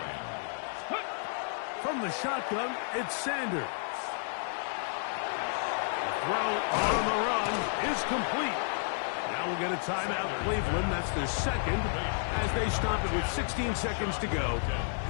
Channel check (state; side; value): silent; right; digital silence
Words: From the shotgun, it's Sanders. Throw on the run is complete. Now we'll get a timeout, Cleveland. That's their second, as they stop it with 16 seconds to go